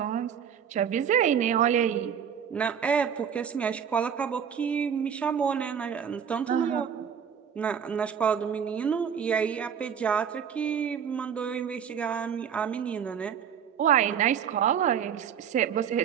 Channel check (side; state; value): left; quieter; 7.9 dB